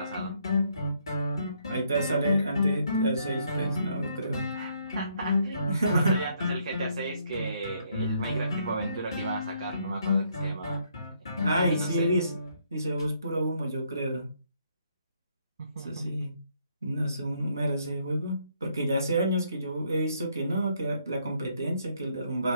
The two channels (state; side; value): inverted; both; correlation -0.71